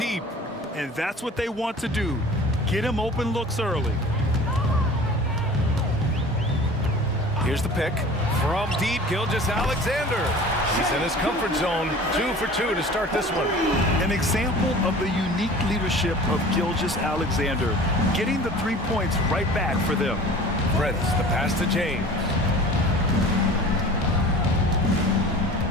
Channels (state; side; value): normal; both; correlation 0.42